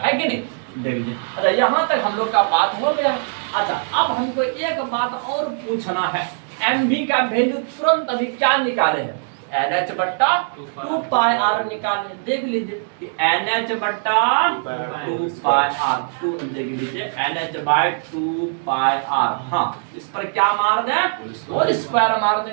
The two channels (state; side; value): silent; left; digital silence